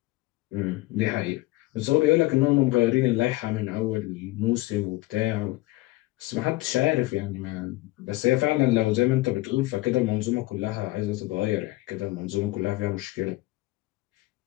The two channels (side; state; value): right; quieter; 19.6 dB